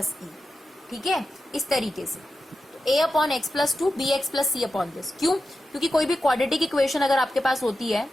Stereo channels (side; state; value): both; normal; correlation 0.91